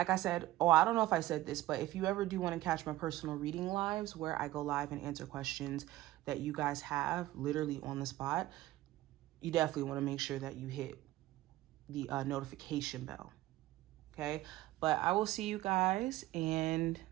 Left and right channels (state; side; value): quieter; left; 16.2 dB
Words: I said, I don't know if I said this, but if you ever do want to catch my personal reading lives where I go live and answer questions that you guys have literally on the spot, you definitely want to make sure that you hit the notification bell. Okay? But I will see you guys, and